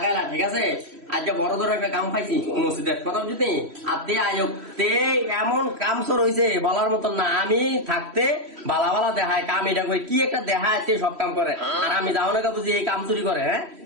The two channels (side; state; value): left; late; 3.1 ms